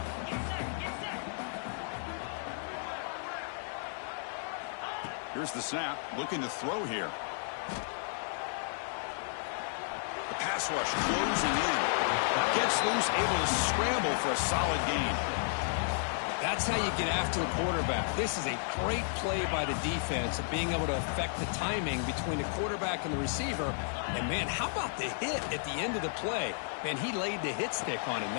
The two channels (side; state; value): right; silent; 56 dB below the other